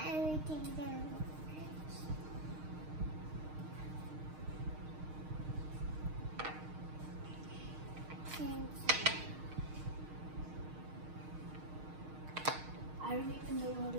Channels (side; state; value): left; late; 6.5 ms